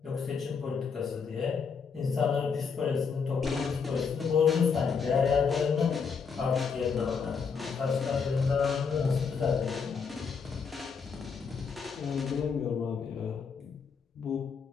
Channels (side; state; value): right; quieter; 5.8 dB